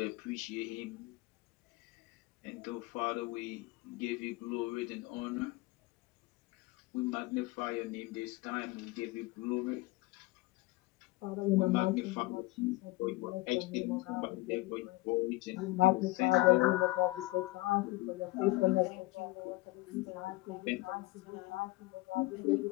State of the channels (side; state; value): right; quieter; 20.8 dB